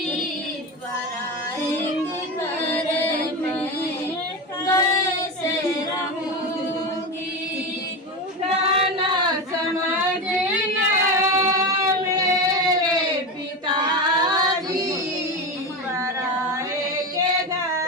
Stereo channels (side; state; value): both; normal; correlation 0.19